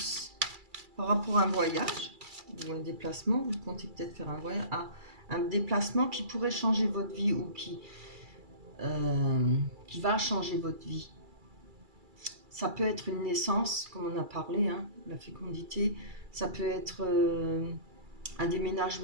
Par rapport à un voyage ou un déplacement, vous comptez peut-être faire un voyage. Ah, un déplacement qui pourrait changer votre vie ou qui va changer votre vie. Ça peut être une naissance, comme on a parlé, hein, la fécondité. Ça peut être un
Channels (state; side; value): late; left; 2.3 ms